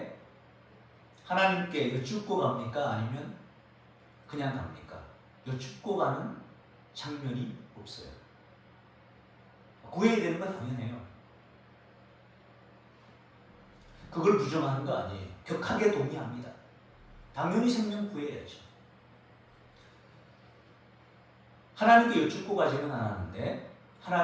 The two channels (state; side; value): identical; both; correlation 1.00